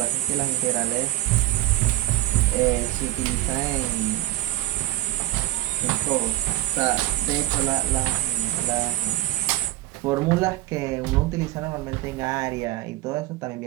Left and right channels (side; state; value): left; quieter; 15.8 dB